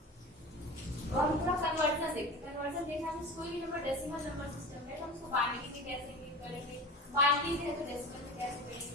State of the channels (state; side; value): normal; both; correlation 0.32